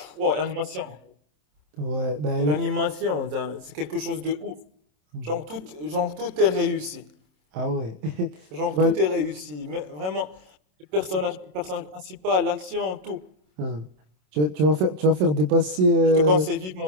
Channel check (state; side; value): late; left; 27 ms